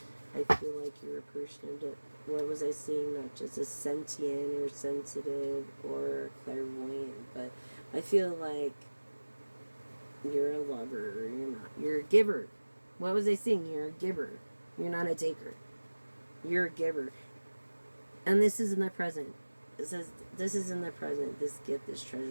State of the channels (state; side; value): inverted; both; correlation -1.00